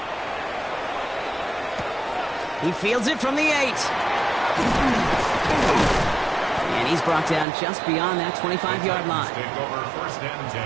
He fields it from the 8. And he's brought down just beyond that 25-yard line. Take over 1st and 10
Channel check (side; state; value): left; drops out; at 7.5 s